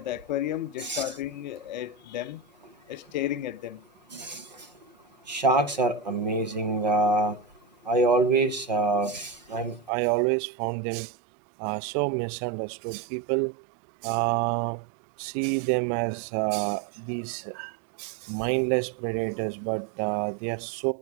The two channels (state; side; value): drops out; left; at 9.9 s